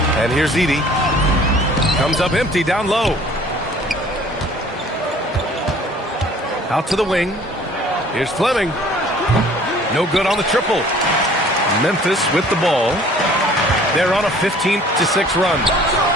And here's Edey. Comes up empty down low. Out to the wing. Here's Fleming. No good on the triple. Memphis with the ball. They're on a 15-6 run.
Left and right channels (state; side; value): normal; both; correlation 0.52